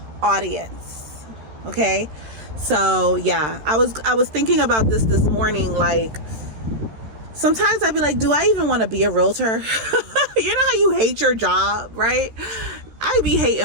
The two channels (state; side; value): late; left; 13 ms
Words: audience. Okay, so yeah, I was thinking about this morning. Like, sometimes I'd be like, do I even want to be a realtor? You know how you hate your job, right? I be